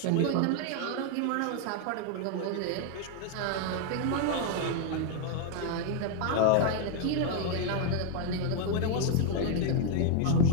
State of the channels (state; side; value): different; both; correlation 0.01